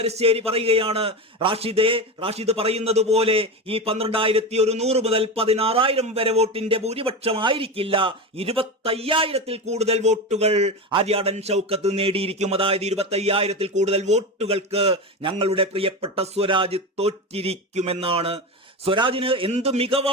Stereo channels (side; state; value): both; normal; correlation 0.21